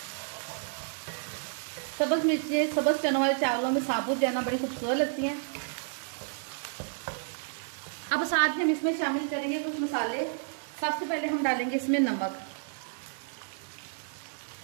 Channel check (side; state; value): left; silent; digital silence